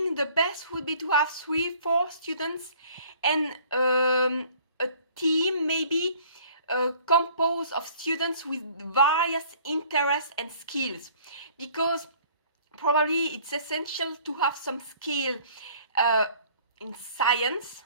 the best would be to have 3-4 students and a team maybe composed of students with various interests and skills, because probably it's essential to have some skill in science,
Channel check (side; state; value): both; inverted; correlation -0.54